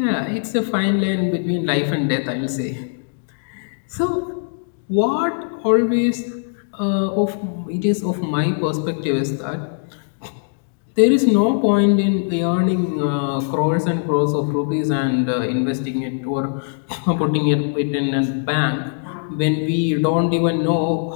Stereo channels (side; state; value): right; silent; digital silence